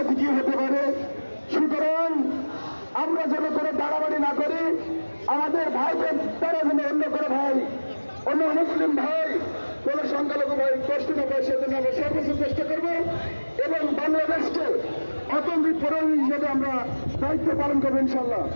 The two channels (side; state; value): both; inverted; correlation -1.00